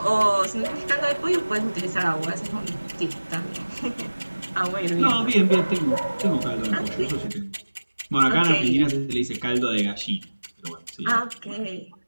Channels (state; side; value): inverted; both; correlation -1.00